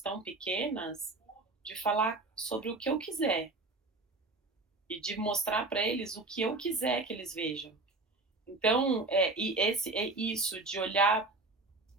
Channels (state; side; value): quieter; left; 3.3 dB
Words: pequenas, de falar sobre o que eu quiser e de mostrar para eles o que eu quiser que eles vejam. Então, isso de olhar